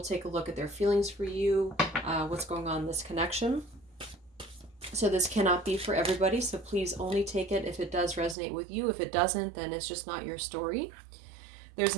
take a look at their feelings for you, what's going on in this connection. So this cannot be for everybody, so please only take it if it does resonate with you. If it doesn't, then it's just not your story. There's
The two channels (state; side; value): drops out; left; at 8.3 s